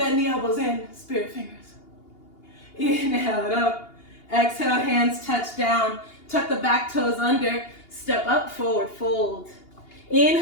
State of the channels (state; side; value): late; right; 2.8 ms